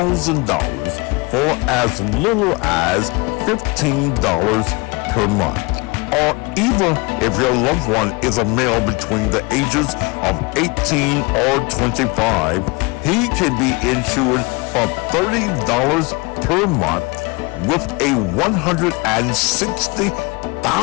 for as little as $15 per month. Or even if your loved one is a male between the ages of 18 or 25, he can be insured for $30 per month with a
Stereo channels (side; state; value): right; quieter; 27.2 dB